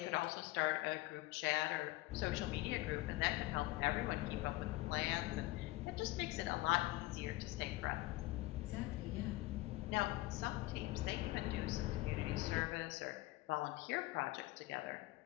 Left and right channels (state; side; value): quieter; right; 19.3 dB